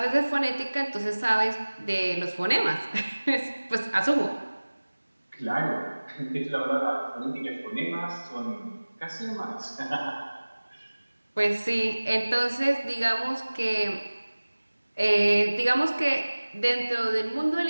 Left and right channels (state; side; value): inverted; both; correlation -1.00